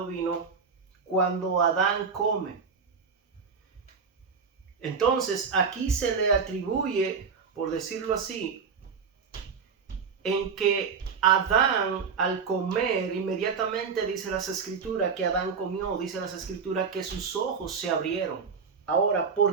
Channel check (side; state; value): left; quieter; 5.7 dB